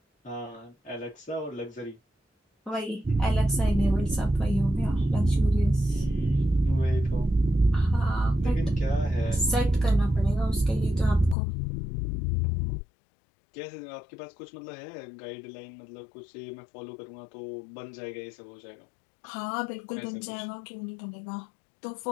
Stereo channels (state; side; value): drops out; right; at 11.4 s